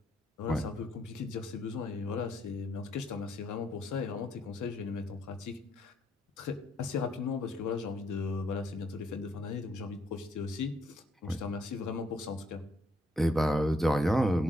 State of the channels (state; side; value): normal; both; correlation 0.72